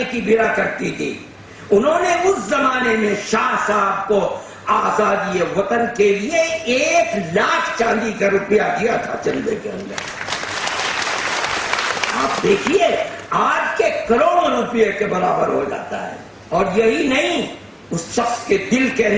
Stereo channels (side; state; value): both; identical; correlation 1.00